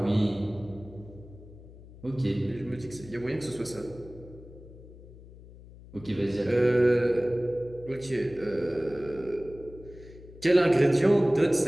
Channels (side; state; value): left; noise; hum, 19 dB below the sound